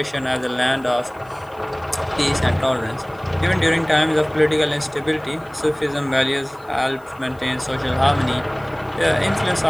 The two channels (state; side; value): noise; left; hiss, 30 dB below the sound